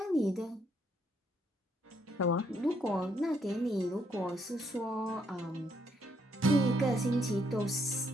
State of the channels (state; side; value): normal; both; correlation 0.72